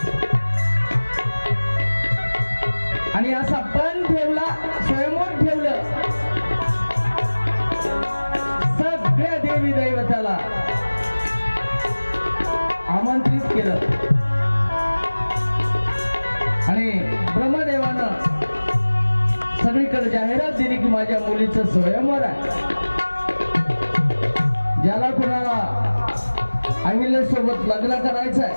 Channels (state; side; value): inverted; both; correlation -1.00